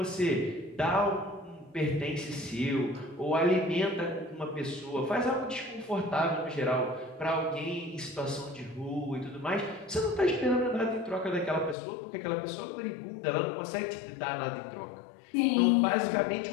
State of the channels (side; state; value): right; drops out; at 11.8 s